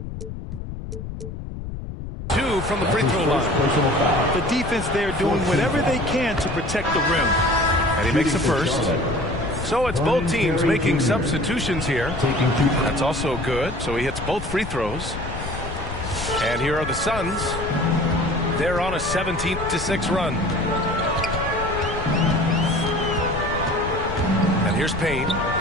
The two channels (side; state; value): left; noise; rumble, 8 dB below the sound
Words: two from the free throw line. The defense there doing whatever they can to protect the rim. And he makes the first. So it's both teams making substitutions here. That's also good. So he hits both free throws. And here are the Suns. They're on a 17-6 run. And here's Payne.